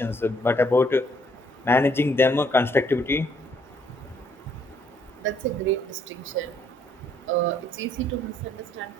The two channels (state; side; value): normal; both; correlation 0.67